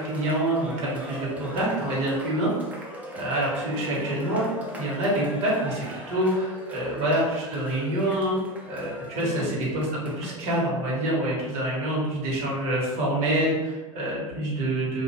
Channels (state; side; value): normal; both; correlation 0.23